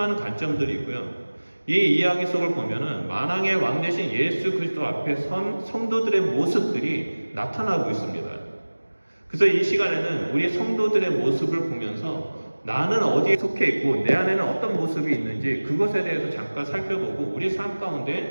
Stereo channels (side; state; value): both; inverted; correlation -1.00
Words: 관점들이 있고요. 이 이야기 속을 보면은 만왕의 왕 대신 예수 그리스도 앞에 선 성도들의 모습들이 나타나고 있습니다. 그래서 이 시간에는 우리 성도들의 모습을 보면서 나는 어디에 속해 있고 내 안에는 어떤 모습이 있는지 그것에 대해서 잠깐 살펴보고 우리 삶